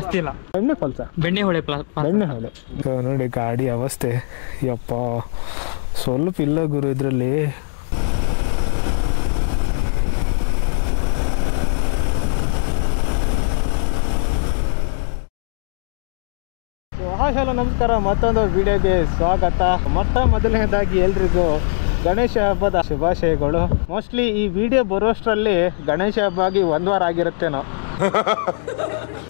ಇಲ್ಲ. ಬೆಣ್ಣೆಹೊಳೆ ಬೆಣ್ಣೆಹೊಳೆ ನೋಡಿ ಗಾಡಿ ಅವಸ್ಥೆ ಯಪ್ಪ ಸ್ವಲ್ಪ ಇಲ್ಲ ಗುರು ಇದರಲ್ಲಿ. ಹಲೋ ನಮಸ್ಕಾರ, ಮತ್ತೊಂದು ವಿಡಿಯೋಗೆ ಸ್ವಾಗತ. ಮೊದಲನೇದಾಗಿ ಎಲ್ರಿಗೂ ಗಣೇಶ ಹಬ್ಬದ ಶುಭಾಶಯಗಳು. ಮೋಸ್ಟ್ಲಿ ಈ ವಿಡಿಯೋ ಬರೋಷ್ಟರಲ್ಲಿ ಗಣೇಶ ಹಬ್ಬ ಆಗಿ 1 ವಾರ ಆಗಿರುತ್ತೇನೋ.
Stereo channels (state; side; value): silent; right; digital silence